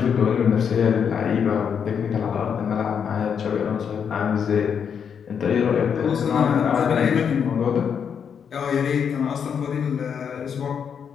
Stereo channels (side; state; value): right; quieter; 7.3 dB